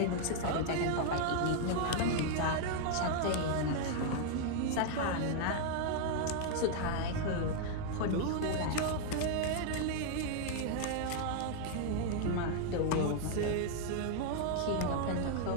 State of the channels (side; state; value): both; different; correlation 0.00